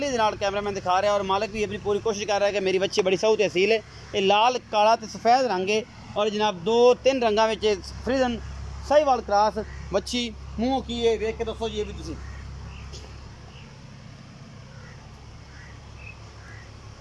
दे नाल कैमरामैन दिखा रहा है। और मालिक भी अपनी पूरी कोशिश कर रहा है कि मेरी बच्ची बड़ी सऊत असील है। ये लाल काला तो सफ़ेद रंग है और जनाब 2-3 रंगा में फ्रीजन साहिवाल क्रॉस बच्ची मूँह की है, वेख के दसो जी। ये भी तुसीं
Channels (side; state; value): both; identical; correlation 1.00